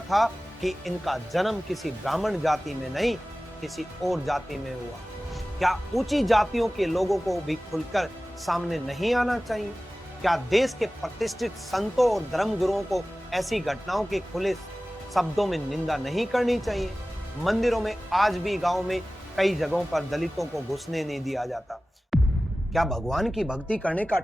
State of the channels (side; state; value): both; normal; correlation 0.97